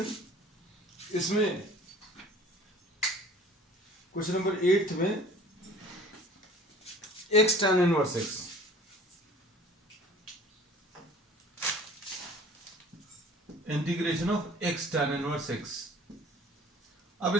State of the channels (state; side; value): normal; both; correlation 0.48